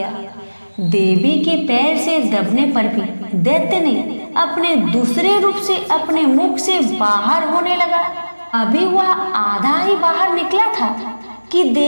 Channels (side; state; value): both; inverted; correlation -1.00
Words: देवी के पैर से दबने पर भी दैत्य ने अपने दूसरे रूप से अपने मुख से बाहर होने लगा। अभी वह आधा ही बाहर निकला था कि